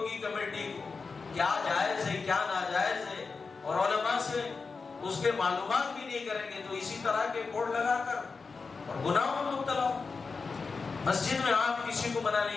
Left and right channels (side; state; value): right; quieter; 4.6 dB